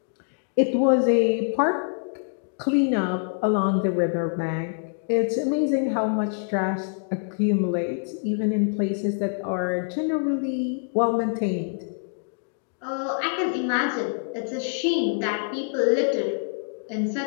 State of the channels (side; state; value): right; silent; digital silence